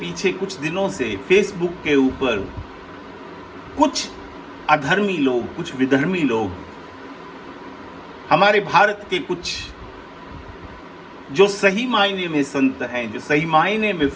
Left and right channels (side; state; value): both; identical; correlation 1.00